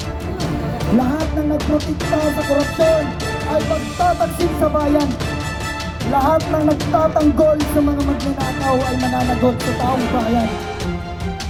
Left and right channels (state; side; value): identical; both; correlation 1.00